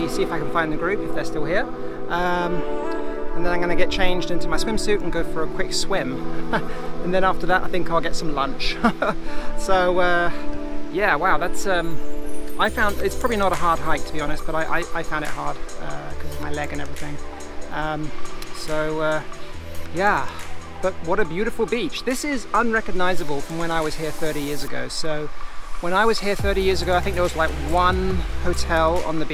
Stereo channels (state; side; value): identical; both; correlation 1.00